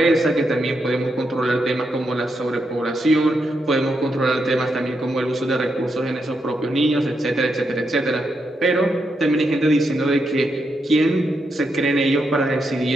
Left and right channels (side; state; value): both; normal; correlation 0.82